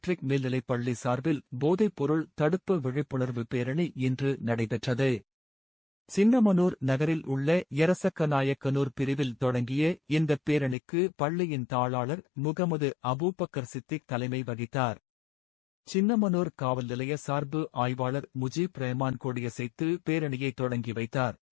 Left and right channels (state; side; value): drops out; right; at 10.8 s